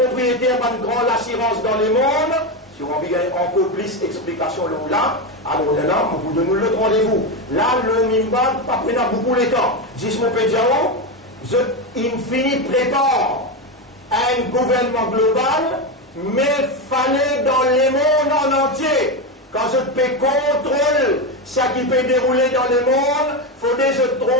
d'un grand l'assurance dans le monde. Si on veut encore plus d'explications là, alors là, vous donnez le rendez-vous. Là, le Mimban, pas prendre beaucoup de temps. Dis-moi, Pédiao, il finit prépare un gouvernement global, mais fallait dans le monde en entier. Quand je peux contrôler ce qui peut dérouler dans le monde, il faut que je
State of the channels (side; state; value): both; normal; correlation 0.13